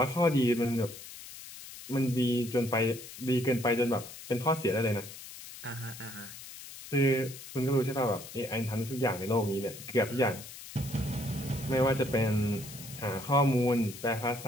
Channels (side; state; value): left; noise; hiss, 14 dB below the sound